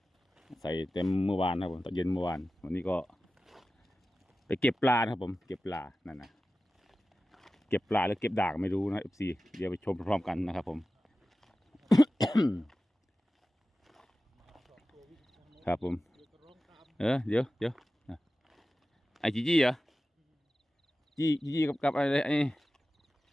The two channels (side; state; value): both; normal; correlation 0.95